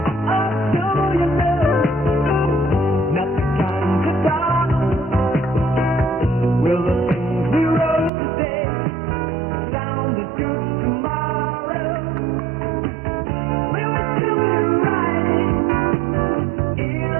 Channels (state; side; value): drops out; left; at 8.1 s